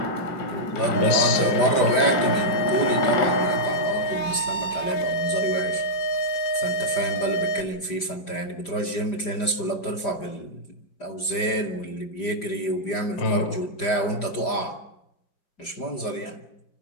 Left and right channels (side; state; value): right; late; 5.0 ms